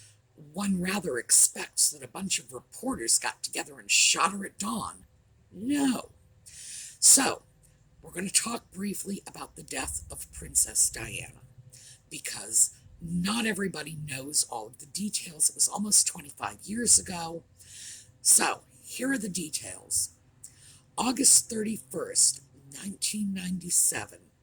one rather expects that a bunch of reporters got together and shot her at dawn. No. So, we're going to talk briefly about the death of Princess Diana, because not everybody knows all of the details. It was almost 25 years ago. So, here are the details. August 31st, 1997,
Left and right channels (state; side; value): identical; both; correlation 1.00